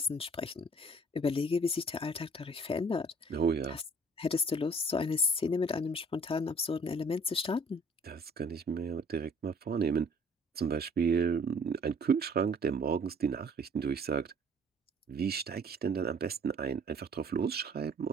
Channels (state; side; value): normal; both; correlation 0.54